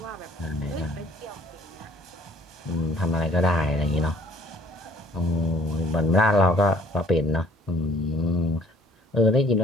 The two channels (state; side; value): normal; both; correlation 0.56